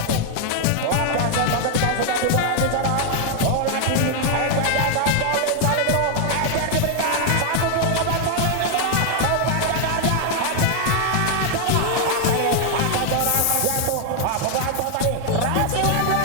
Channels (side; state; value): both; different; correlation 0.00